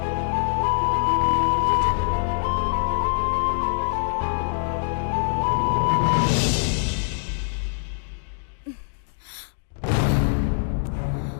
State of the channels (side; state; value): right; silent; digital silence